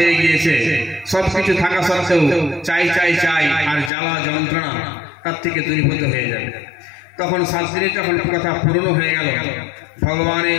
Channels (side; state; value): right; drops out; at 3.9 s